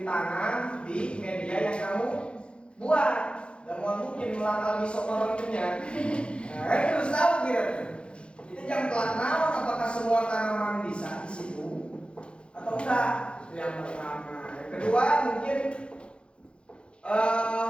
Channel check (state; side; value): late; right; 0.057 ms